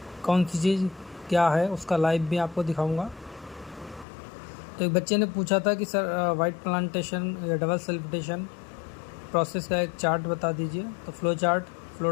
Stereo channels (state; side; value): drops out; right; at 4.0 s